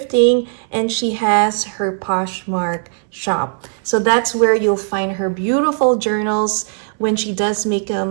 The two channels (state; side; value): silent; left; 67 dB below the other